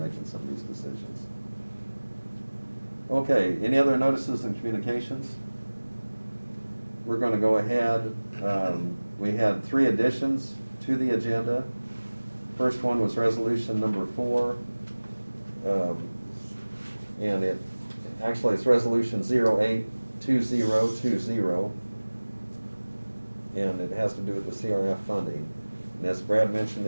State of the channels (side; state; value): both; inverted; correlation -1.00